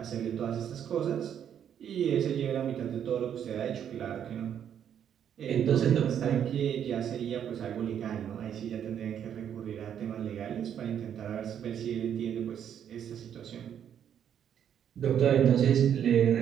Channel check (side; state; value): left; quieter; 9.1 dB